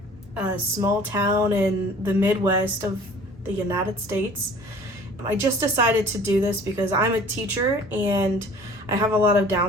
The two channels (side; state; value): both; normal; correlation 0.49